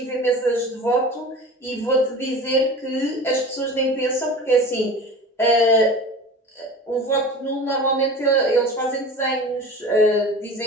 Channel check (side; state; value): both; normal; correlation 0.36